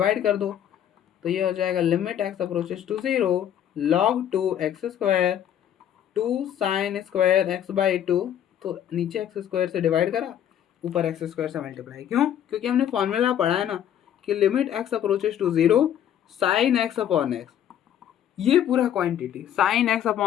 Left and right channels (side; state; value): right; quieter; 10.2 dB